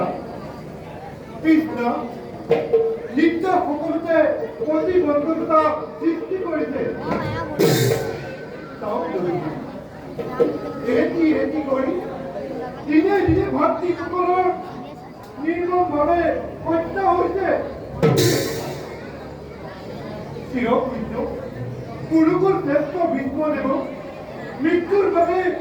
কৃষ্ণ, নিত্য সকলোতে প্ৰতিবন্ধকতা সৃষ্টি কৰিছে। এটি কৰি দিনে দিনে ভাতৃসকলৰ নিৰ্মমভাৱে হত্যা হৈছে। চিৰপূজ্য কুৰুকুল শ্ৰেষ্ঠ ভীষ্মদেৱক মৃত্যুৰ বাবে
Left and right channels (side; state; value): both; identical; correlation 1.00